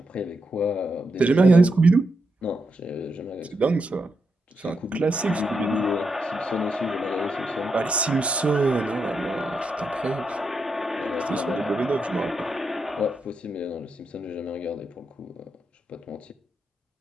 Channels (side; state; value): both; normal; correlation 0.83